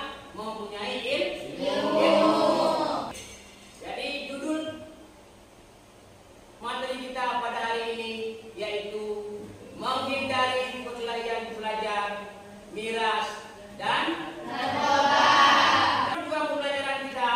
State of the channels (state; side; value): identical; both; correlation 1.00